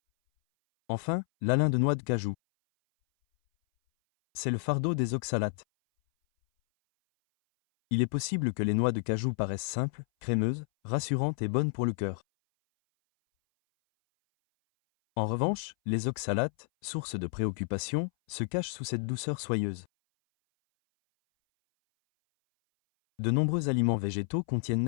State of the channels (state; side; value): silent; right; 58 dB below the other